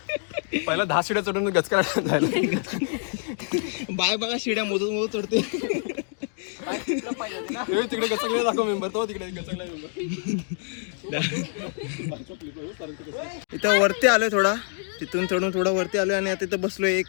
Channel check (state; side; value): silent; right; 61 dB below the other